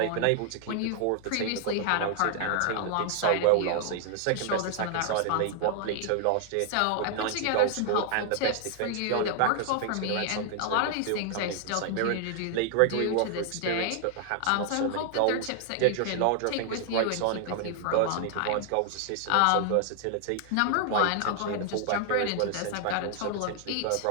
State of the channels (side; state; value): both; different; correlation 0.00